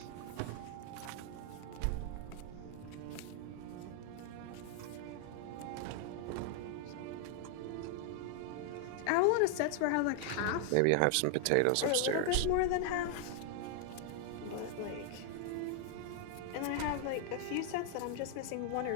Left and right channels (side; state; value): both; different; correlation 0.00